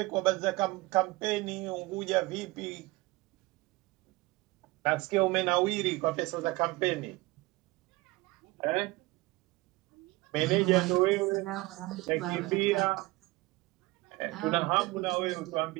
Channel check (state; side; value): quieter; left; 21.5 dB